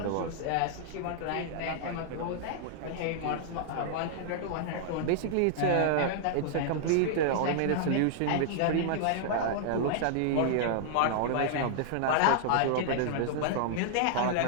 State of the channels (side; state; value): both; different; correlation -0.01